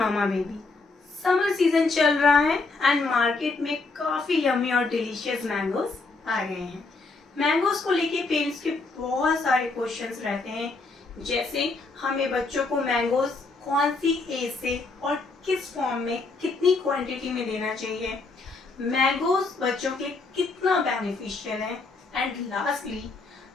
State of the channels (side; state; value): right; quieter; 3.7 dB